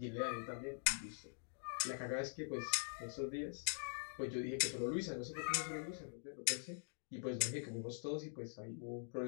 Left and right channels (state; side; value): silent; right; digital silence